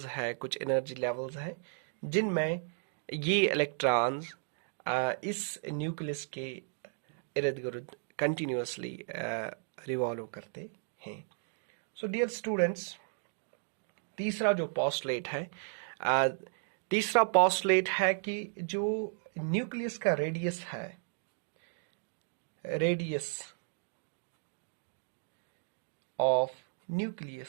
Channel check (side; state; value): left; silent; digital silence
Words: हैं, कुछ energy levels हैं जिनमें ये इलेक्ट्रॉन्स इस न्यूक्लियस के इर्द गिर्द कंटिन्यूसली रिवॉल्व करते हैं. सो डियर स्टूडेंट्स, तीसरा जो पोस्टुलेट है, तीसरा पोस्टुलेट है कि जो न्यूक्लियस का रेडियस है, radius of